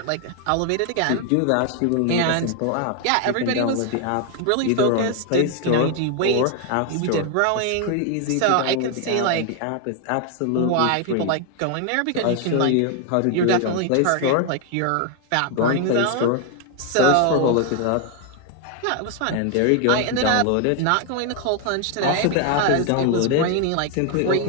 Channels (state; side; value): different; both; correlation 0.00